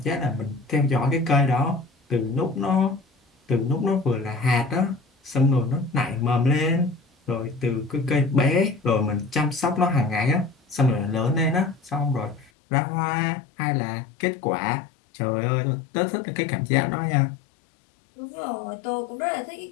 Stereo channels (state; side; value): drops out; right; at 12.5 s